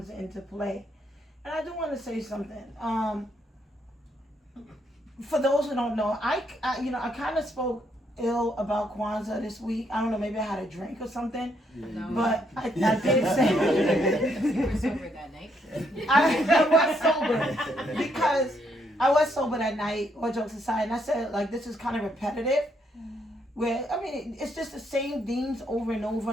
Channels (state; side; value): normal; both; correlation 0.74